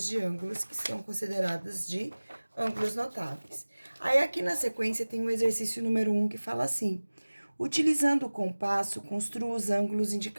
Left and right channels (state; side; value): inverted; both; correlation -1.00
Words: de ângulos que são consideradas de ângulos notáveis. Aí, aqui na sequência, tem o exercício número 1 que fala assim: utilizando o compasso, construa os ângulos